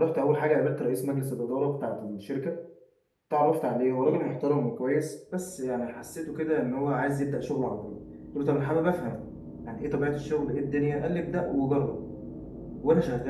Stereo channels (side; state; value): both; identical; correlation 1.00